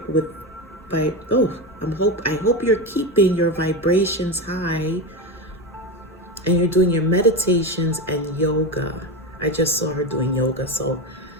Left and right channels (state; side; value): normal; both; correlation 0.18